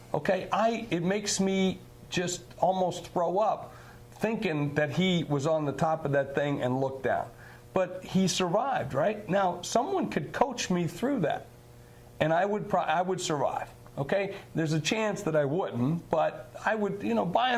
okay? It makes me just almost throw up, thinking that he was on the top of that thing and looked down. But he survived, right? Now, someone could coach me through that, and I would survive, okay? There's a chance that I wouldn't, but I would, by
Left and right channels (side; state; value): both; identical; correlation 1.00